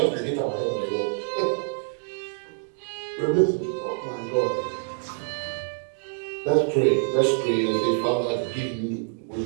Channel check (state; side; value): silent; left; digital silence